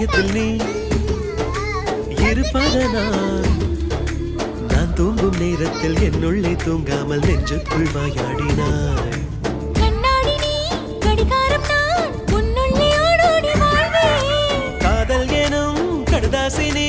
நீ இருப்பதனால் நான் தூங்கும் நேரத்தில் என்னுள்ளே தூங்காமல் நெஞ்சுக்குள் வாயாடினாய் கண்ணாடி நீ கடிகாரம் நான் உன்னுள்ளே ஓடோடி வாழ்வேன் காதல் எனும் கடுதாசி நீ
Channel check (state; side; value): identical; both; correlation 1.00